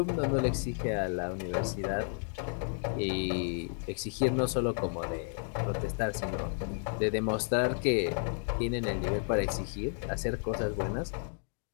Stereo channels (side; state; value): right; silent; 56 dB below the other